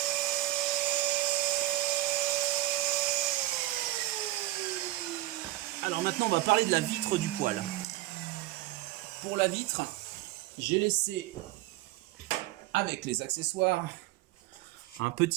Alors maintenant on va parler de la vitre du poêle. Pour la vitre, j'ai laissé avec les accessoires un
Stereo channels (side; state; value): left; quieter; 17.0 dB